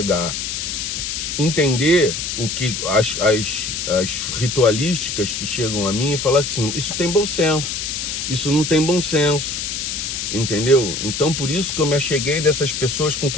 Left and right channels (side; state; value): left; noise; hiss, 3 dB below the sound